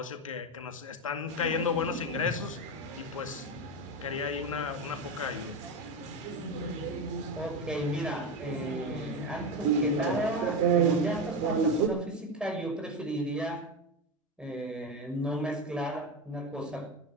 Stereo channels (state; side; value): normal; both; correlation 0.17